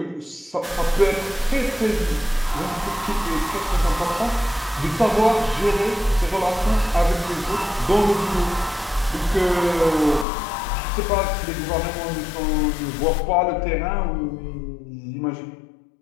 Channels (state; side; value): drops out; right; at 10.2 s